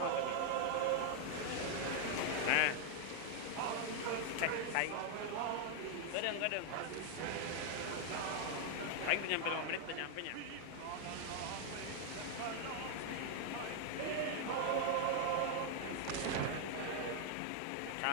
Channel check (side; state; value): both; different; correlation 0.00